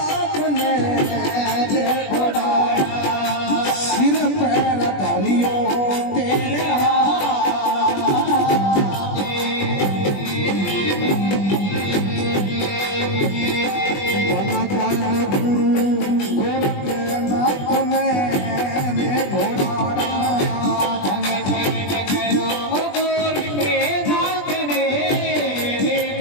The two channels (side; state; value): right; late; 20 ms